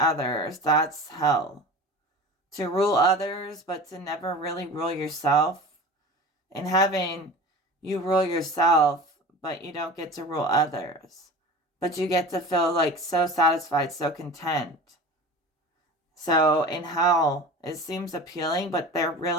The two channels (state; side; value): normal; both; correlation 0.36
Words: That's hell. To rule others, but to never really rule yourself. In heaven, you rule yourself, but you don't get to rule others. But you get to feel like so satisfied, so content. So in hell, it seems appealing, but they're